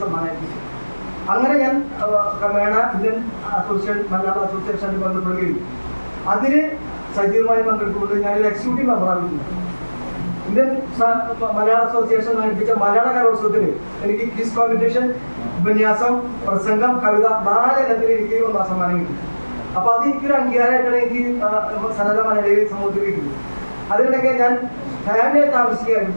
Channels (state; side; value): inverted; both; correlation -1.00